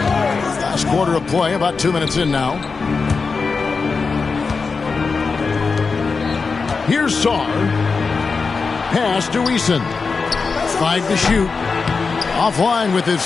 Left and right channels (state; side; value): quieter; right; 4.7 dB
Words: Last quarter of play, about 2 minutes in now. Here's Sarr. Pass to Eason. 5 to shoot. Offline with